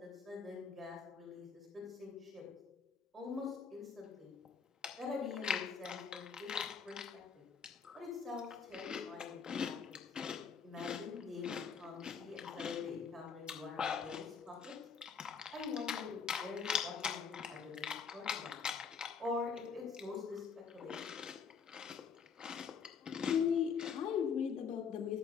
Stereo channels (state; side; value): quieter; right; 6.2 dB